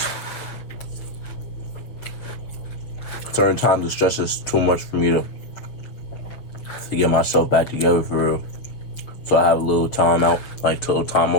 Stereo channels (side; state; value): right; late; 6.6 ms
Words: Certain times the stress is too much for me to get myself back together for real. So I have a little time out, like a little time